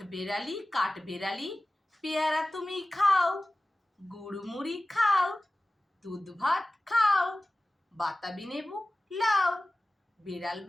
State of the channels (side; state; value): both; normal; correlation 0.96